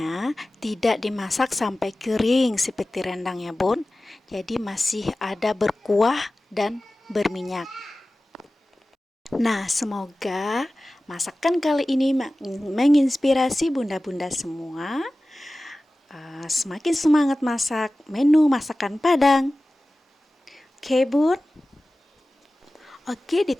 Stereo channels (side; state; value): both; normal; correlation 0.96